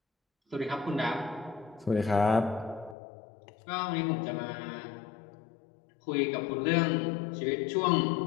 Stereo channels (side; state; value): right; drops out; at 3.0 s